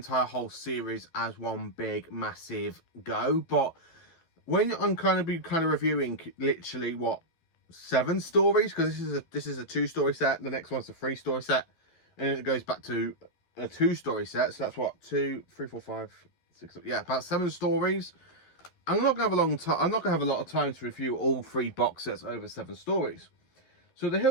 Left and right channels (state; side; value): late; right; 12 ms